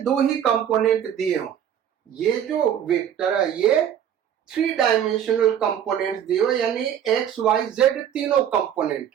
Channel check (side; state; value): left; quieter; 9.5 dB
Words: दो ही कंपोनेंट दिए हों, ये जो वेक्टर है ये 3 डायमेंशनल कंपोनेंट्स दिए हो, यानी एक्स वाई जेड तीनों कंपोनेंट